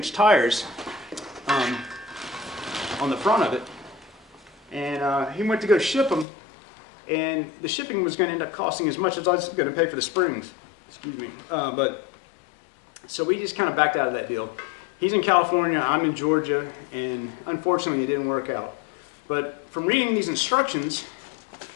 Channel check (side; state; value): right; drops out; at 6.2 s